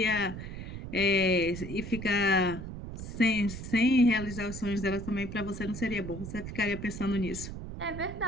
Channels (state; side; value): noise; right; rumble, 9 dB below the sound